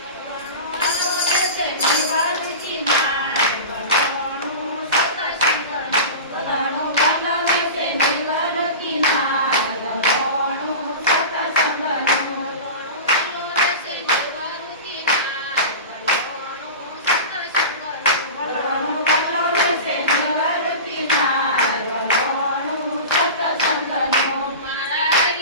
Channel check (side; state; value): both; inverted; correlation -0.30